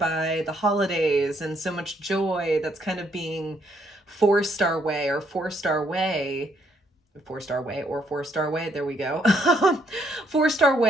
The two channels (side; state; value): both; normal; correlation 0.71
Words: the holidays and so much joy that's kind of being forced our way, there we go. Forced our